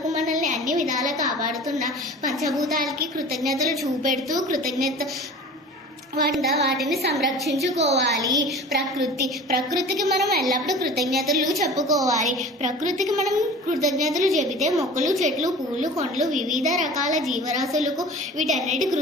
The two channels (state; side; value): normal; both; correlation 0.40